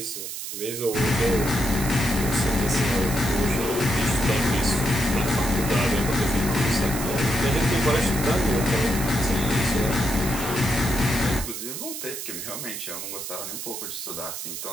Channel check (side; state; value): right; noise; hiss, 7 dB below the sound